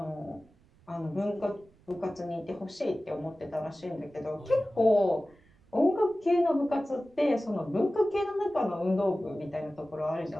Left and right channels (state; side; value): noise; right; rumble, 30 dB below the sound